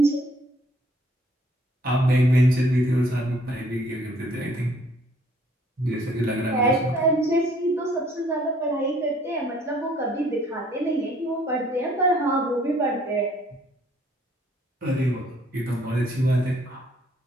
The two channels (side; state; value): both; normal; correlation 0.62